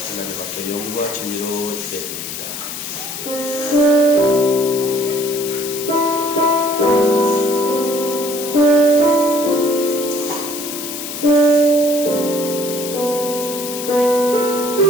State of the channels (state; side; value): noise; left; hiss, 8 dB below the sound